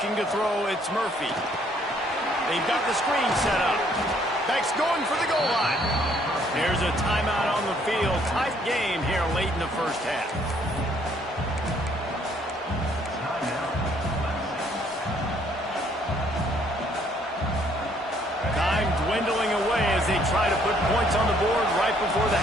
to throw, it's Murphy. They've got the screen set up. Beck's going for the goal line. There's a timeout on the field. Tight game here late in the first half. Time dwindling away as they try to put points on the board right before the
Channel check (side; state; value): both; normal; correlation 0.65